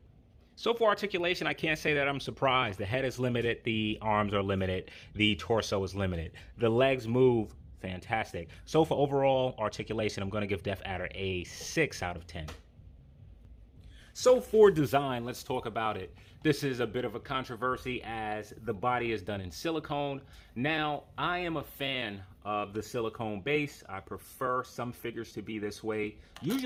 So for articulation, I can't say that I'm surprised. The head is limited, the arms are limited, the torso is limited. The legs move fantastic. So for overall articulation, I'm going to give Death Adder a 6 out of 10. So for design, let's talk about it. This is a bit of a controversy as the body is done in silicone. Now, I am a fan of the silicone base. I prefer some figures to be this way,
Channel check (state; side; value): identical; both; correlation 1.00